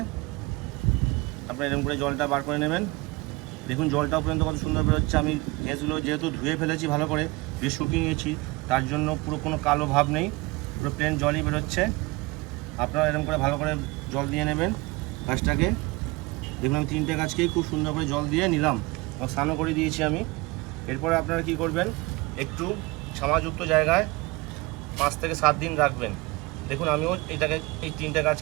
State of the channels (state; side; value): quieter; left; 23.8 dB